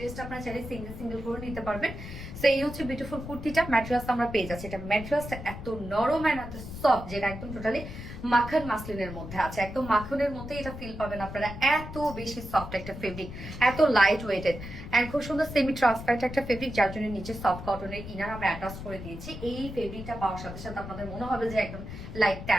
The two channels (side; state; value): left; noise; rumble, 10 dB below the sound